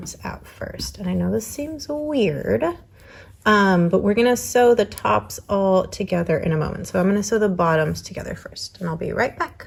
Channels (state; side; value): identical; both; correlation 1.00